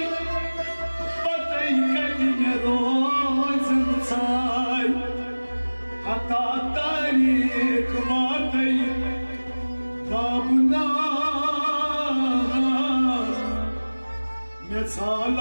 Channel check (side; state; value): both; inverted; correlation -1.00